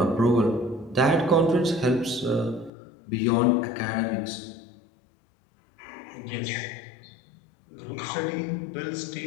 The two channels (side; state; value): right; drops out; at 2.7 s